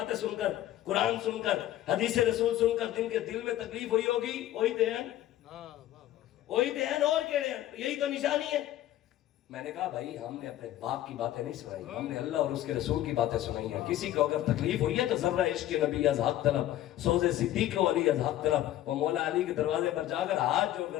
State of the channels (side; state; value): right; quieter; 13.4 dB